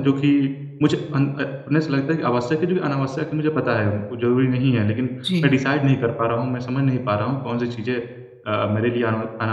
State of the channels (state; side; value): identical; both; correlation 1.00